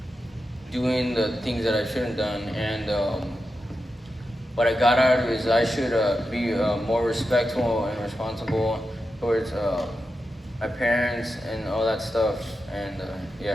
doing the things that I shouldn't done. And what I got out of it is I should be more respectful and responsible towards my parents and all that stuff. And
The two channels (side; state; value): both; normal; correlation 0.89